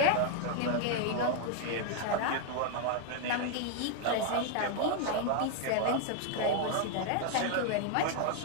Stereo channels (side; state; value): both; different; correlation 0.00